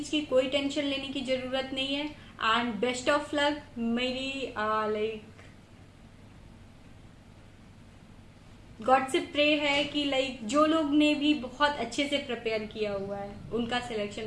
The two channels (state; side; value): identical; both; correlation 1.00